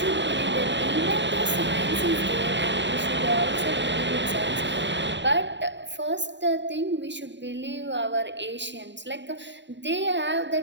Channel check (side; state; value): left; late; 0.52 ms